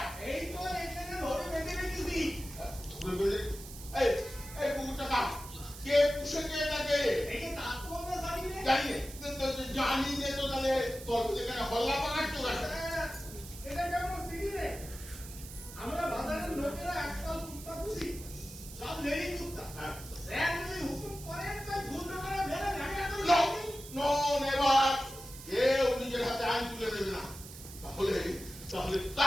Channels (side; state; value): right; noise; hiss, 14 dB below the sound